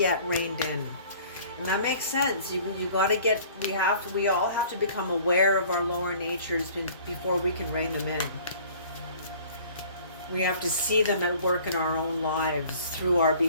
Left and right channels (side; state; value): both; inverted; correlation -0.50